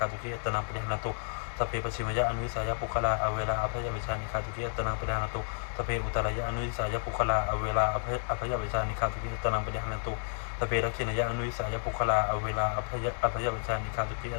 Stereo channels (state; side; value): silent; right; digital silence